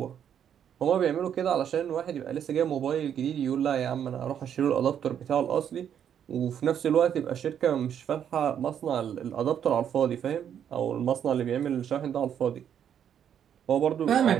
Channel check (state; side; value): quieter; left; 9.0 dB